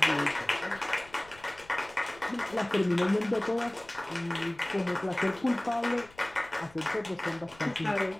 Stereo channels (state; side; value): noise; left; rumble, 24 dB below the sound